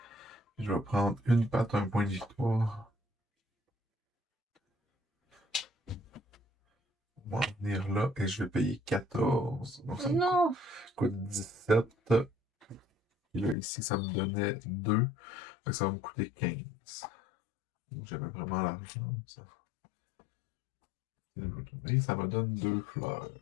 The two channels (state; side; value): drops out; right; at 13.6 s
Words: Je vais prendre une patte, un point de victoire. On va en venir là et je vais payer 14. Donc ça me Non! coûte 17. Puis là, ici, ça me donnait 2. Fait que ça va me coûter 15. Donc, j'avais vraiment l'argent. Ça. Et ça me donne 2 fleurs.